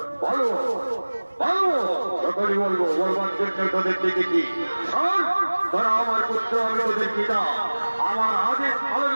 বলো বলো সকলে বলবো বলবার জন্য তোদের দেখেছি তোরা আমার পুত্র আমি ওদের পিতা আমার আদেশ পালন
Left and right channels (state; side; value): inverted; both; correlation -1.00